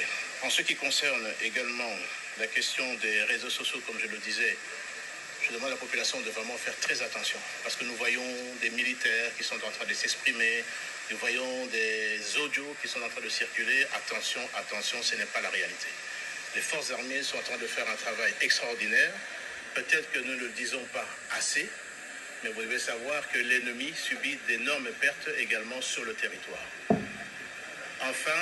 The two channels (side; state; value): both; identical; correlation 1.00